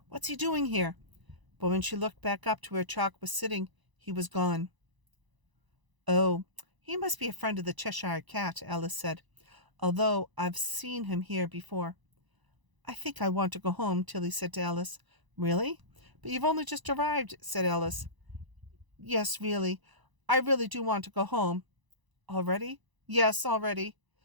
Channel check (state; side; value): late; left; 1.0 ms